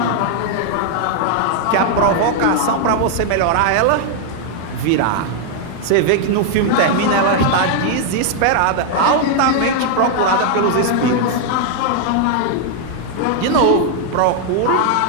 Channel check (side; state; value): both; different; correlation 0.00